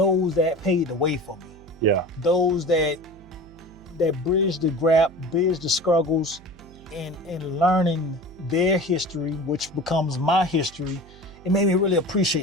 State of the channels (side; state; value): right; noise; hum, 22 dB below the sound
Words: paved the way for me. Yeah. Those that bridged the gap, bridged the struggles, and learning their history, which becomes my history. It made me really